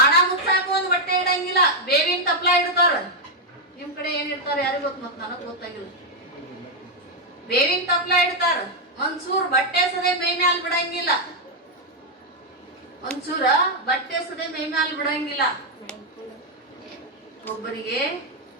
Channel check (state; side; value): normal; both; correlation 0.01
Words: ಮುಚ್ಚಾಕ ಒಂದ್ ಬಟ್ಟೆ ಇಡಂಗಿಲ್ಲ, ಬೇವಿನ ತಪ್ಲ ಇಡ್ತಾರ. ನಿಮ್ ಕಡೆ ಏನ್ ಇಡ್ತಾರ ಯಾರಿಗ ಗೊತ್ತ, ಮತ್ ನನಗ್ ಗೊತ್ತಾಗಿಲ್ಲ. ಬೇವಿನ ತಪ್ಲ ಇಡ್ತಾರ. ಒಂದ್ಸೂರ್ ಬಟ್ಟೆ ಸದೆ ಮೈ ಮ್ಯಾಲ ಬಿಡಂಗಿಲ್ಲ. ಒಂದ್ಸೂರ ಬಟ್ಟೆ ಸದೆ ಮೈ ಮ್ಯಾಲ ಬಿಡಂಗಿಲ್ಲ. ಒಬ್ಬರಿಗೆ